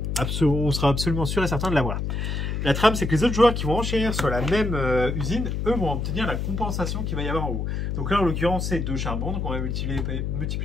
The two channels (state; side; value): noise; left; hum, 2 dB below the sound